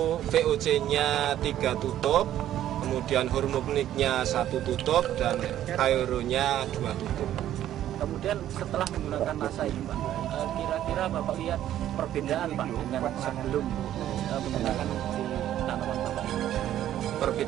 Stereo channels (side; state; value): left; quieter; 12.0 dB